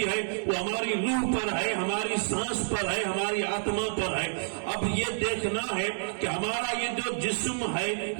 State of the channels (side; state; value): left; silent; digital silence